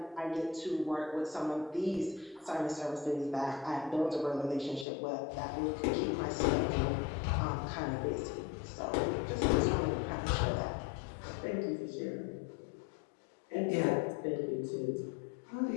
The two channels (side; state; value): right; drops out; at 4.9 s